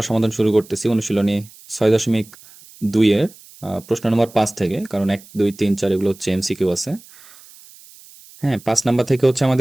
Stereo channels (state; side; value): noise; right; hiss, 23 dB below the sound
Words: সমাধান শুরু করতেছি অনুশীলনী ৬.২ এর প্রশ্ন নম্বর ৫ থেকে, কারণ ১, ২, ৩, ৪ এগুলো হচ্ছে এমসিকিউ আছে। হ্যাঁ, ৫ নাম্বার থেকে হচ্ছে